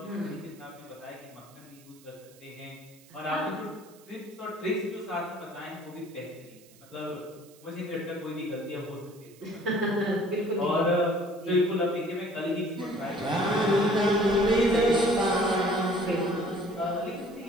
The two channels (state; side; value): noise; right; hiss, 26 dB below the sound